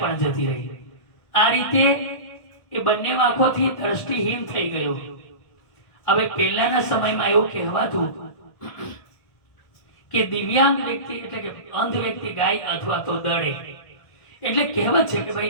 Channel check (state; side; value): late; right; 1.2 ms